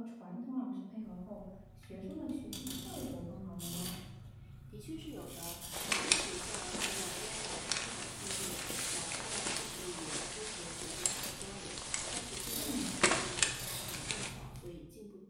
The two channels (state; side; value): identical; both; correlation 1.00